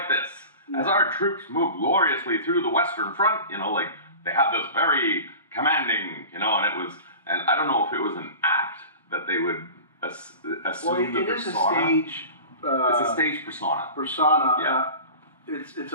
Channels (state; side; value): inverted; both; correlation -0.36